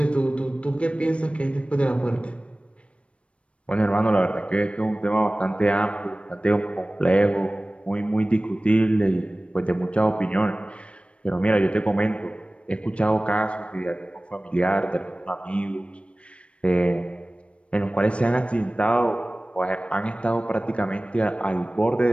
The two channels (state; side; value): late; right; 0.061 ms